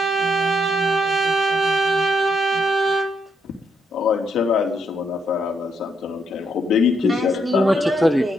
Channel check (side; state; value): both; normal; correlation 0.77